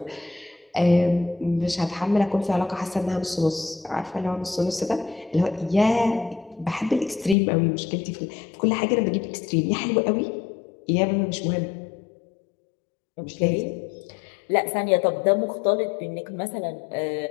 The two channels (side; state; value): right; drops out; at 7.4 s